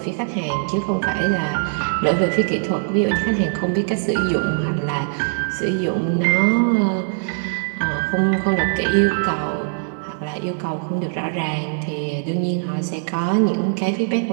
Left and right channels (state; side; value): silent; left; digital silence